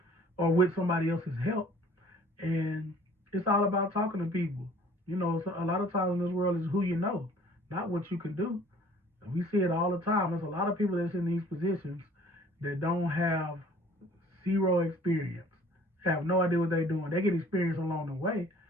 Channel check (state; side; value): normal; both; correlation 0.53